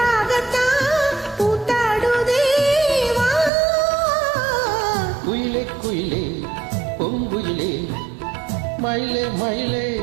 குயிலே பொங்குயிலே மயிலே மயிலே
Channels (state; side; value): drops out; left; at 3.5 s